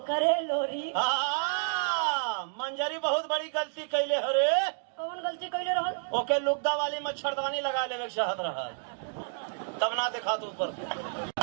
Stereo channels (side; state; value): left; silent; digital silence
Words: करे लोरी। मंजरी बहुत बड़ी गलती कैले हरे। कौन गलती कैले रहल? ओके लुगदा वाली मच्छरदानी लगा लेवे चाहत रहा, तब ना देखा तू ऊपर